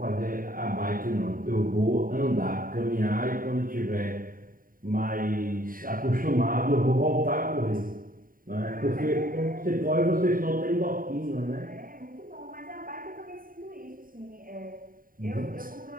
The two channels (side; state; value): left; late; 0.41 ms